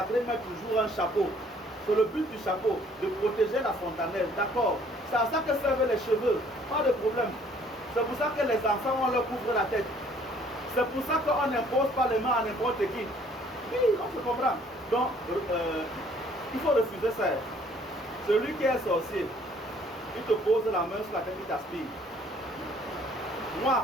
mettent toujours un chapeau. C'est le but du chapeau, de protéger la fontanelle. D'accord? C'est à ça que servent les cheveux. Pas de problème. C'est pour ça que les enfants, on leur couvre la tête. C'est pour ça qu'on n'impose pas les mains à n'importe qui. Oui, on se comprend. Donc, il faut refuser ça. Celui qui est sorcier, il te pose la main sur la tête, il t'aspire. Moi,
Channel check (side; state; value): both; normal; correlation 0.59